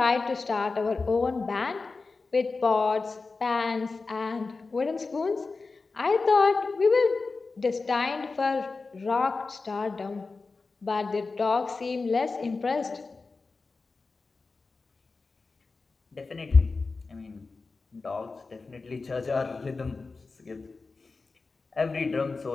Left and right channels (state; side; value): quieter; right; 4.0 dB